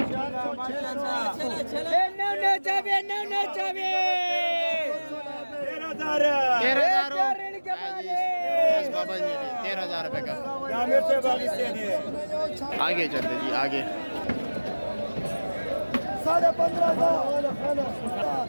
13,000 रुपये का। आगे चलते जी, आगे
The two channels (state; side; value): inverted; both; correlation -1.00